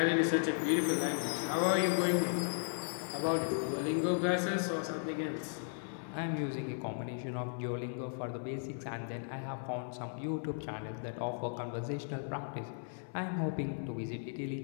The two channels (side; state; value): right; silent; 54 dB below the other